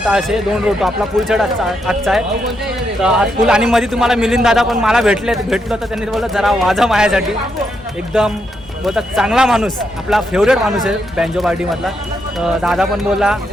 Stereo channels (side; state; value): both; normal; correlation 0.80